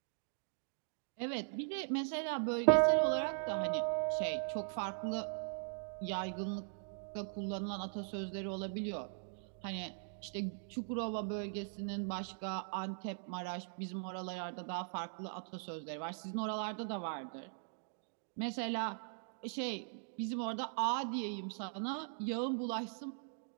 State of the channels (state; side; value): silent; left; digital silence